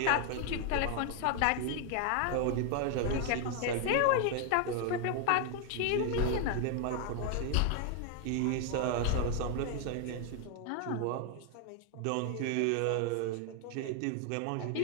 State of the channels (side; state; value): both; different; correlation 0.00